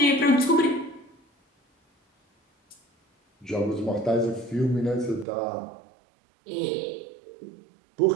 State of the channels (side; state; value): left; drops out; at 5.2 s